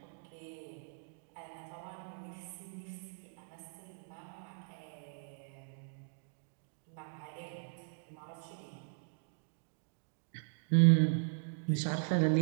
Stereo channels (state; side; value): silent; left; digital silence